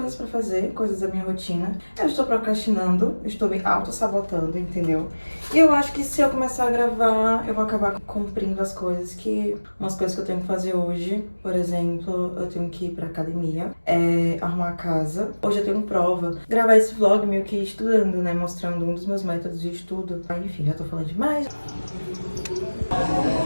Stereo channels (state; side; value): inverted; both; correlation -1.00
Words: pra fazer, coisas da minha rotina. Eu estou procrastinando, estou me auto-sabotando, entendeu? E eu acho que se eu começar a gravar, eu vou acabar cumprindo as coisas umas coisas que eu tenho que fazer hoje. Por exemplo, eu tenho que ir pra academia, arrumar a casa. Hoje eu tenho prova. Gravar esse vlog meio que estudando, né? Mostrando um dos meus métodos de estudo. Enfim, já tô falando demais.